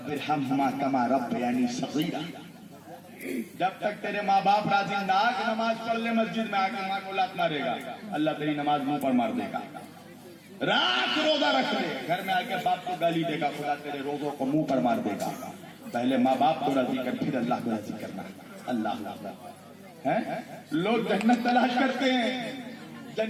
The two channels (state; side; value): identical; both; correlation 1.00